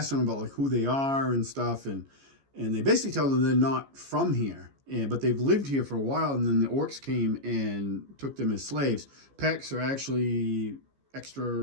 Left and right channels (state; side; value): late; left; 14 ms